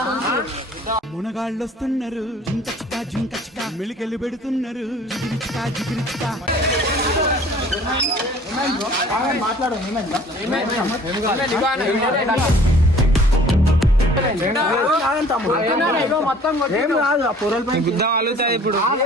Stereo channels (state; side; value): normal; both; correlation 0.51